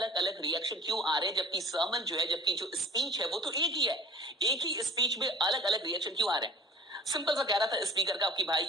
अलग रिएक्शन क्यों आ रहे हैं? जबकि सर्मन जो है, जबकि जो स्पीच है वो तो एक ही है, एक ही स्पीच में अलग अलग रिएक्शन क्यों आ रहे हैं? सिंपल सा कह रहा था स्पीकर का कि भाई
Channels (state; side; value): normal; both; correlation 0.45